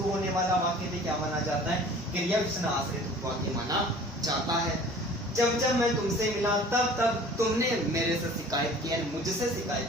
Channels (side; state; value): both; normal; correlation 0.47